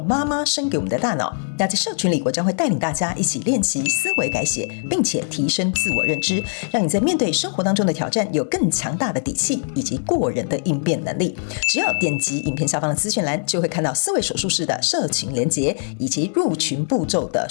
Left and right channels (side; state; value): right; silent; digital silence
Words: 妈妈生给我们的大脑。那在社群里，我将会带领大家一起练习思维改写，并且提升自我认知，让你在面对生活当中的挑战有更强大的底气以及过人的应变能力。只要点击影片下方的资讯栏，就会看到思维手术室的社群连结以及入群步骤的